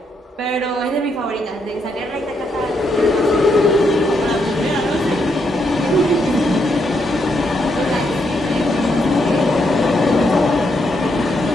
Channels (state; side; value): normal; both; correlation 0.78